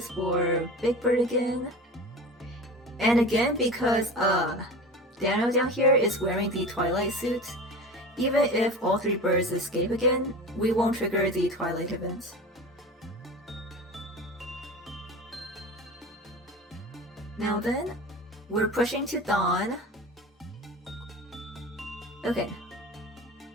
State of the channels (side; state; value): both; normal; correlation 0.33